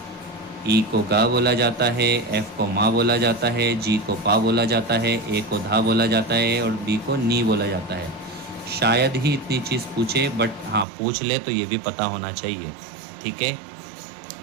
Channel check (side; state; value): left; drops out; at 10.9 s